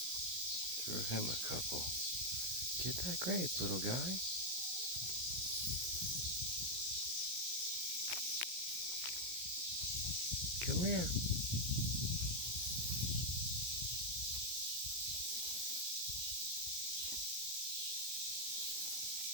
Threw him a couple. Get that grape, little guy. Come here.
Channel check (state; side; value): late; left; 17 ms